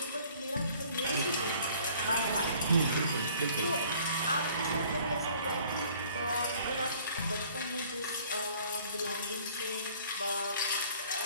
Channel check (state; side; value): inverted; both; correlation -0.54